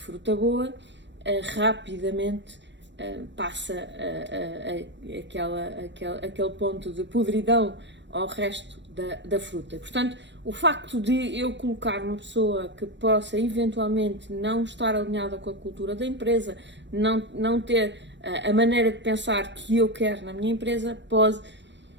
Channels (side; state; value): left; late; 0.53 ms